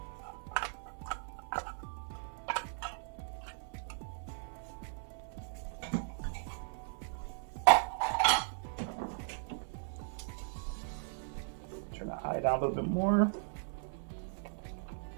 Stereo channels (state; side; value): silent; left; 53 dB below the other